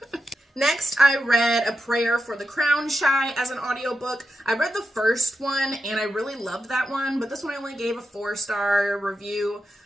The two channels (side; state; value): both; normal; correlation 0.88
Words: Next, I read A Prayer for the Crown Shy as an audiobook. I read the first one, and I really loved that one, but this one I only gave a 4-star review.